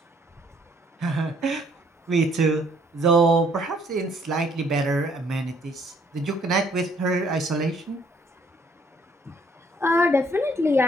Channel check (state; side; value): normal; both; correlation 0.64